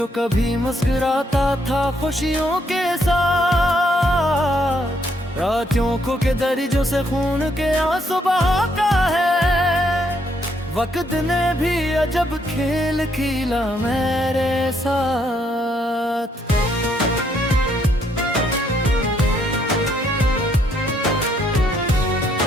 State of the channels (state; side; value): normal; both; correlation 0.72